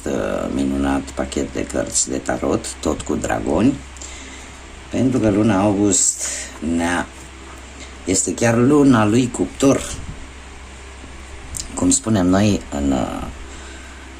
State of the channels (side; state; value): both; identical; correlation 1.00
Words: minunat pachet de cărți de tarot, tot cu dragoni, pentru că luna august este chiar luna lui Cuptor, cum spunem noi